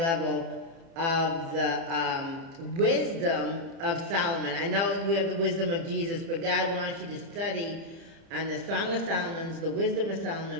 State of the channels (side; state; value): left; late; 30 ms